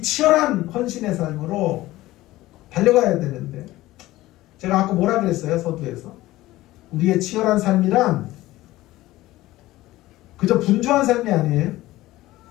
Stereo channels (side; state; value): right; quieter; 17.0 dB